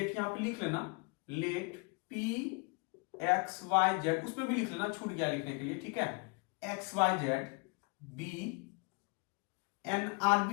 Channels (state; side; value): quieter; right; 30.6 dB